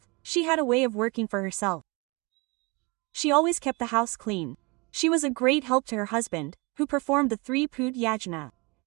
she had a way of working for herself. She always kept the house clean. She was a great help to her husband, who performed the 3 Pud Yajna.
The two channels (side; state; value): left; quieter; 28.0 dB